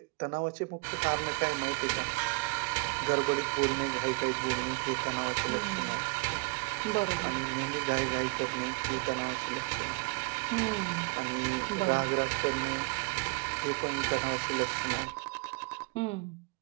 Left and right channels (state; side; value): quieter; left; 29.1 dB